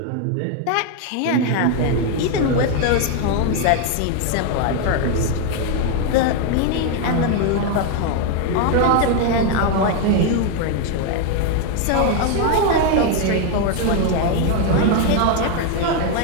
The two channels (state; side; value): different; both; correlation 0.01